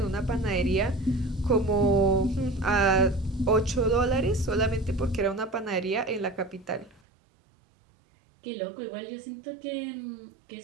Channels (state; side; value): drops out; left; at 7.0 s